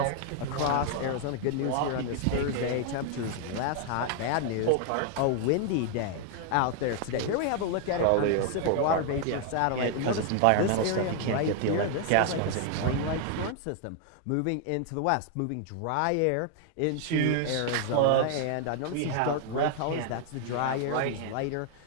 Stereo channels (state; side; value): different; both; correlation 0.00